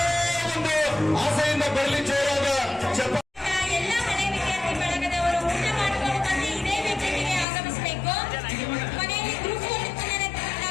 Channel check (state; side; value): drops out; right; at 7.5 s